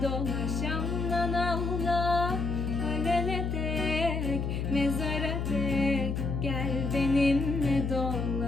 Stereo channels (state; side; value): noise; left; hum, 1 dB below the sound